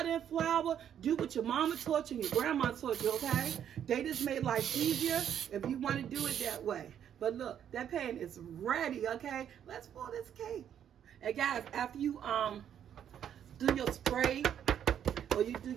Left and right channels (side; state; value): left; quieter; 9.4 dB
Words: and flour. Do what your mama taught you and your grandma taught you, okay? They just made life easier if you want to do it that way. But look, that pan is ready, okay? Let's pour this cake. And guys, after you do your spray or you do